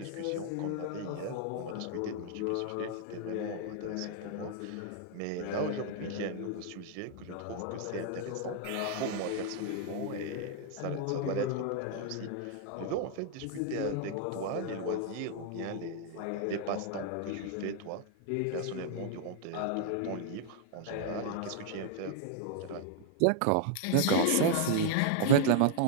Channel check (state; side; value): different; both; correlation 0.00